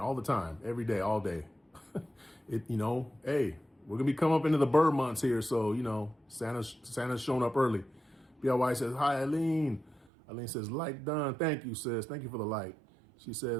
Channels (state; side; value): drops out; left; at 10.1 s